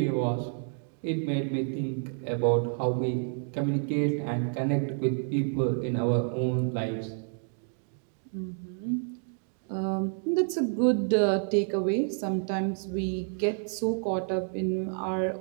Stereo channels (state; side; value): silent; left; 58 dB below the other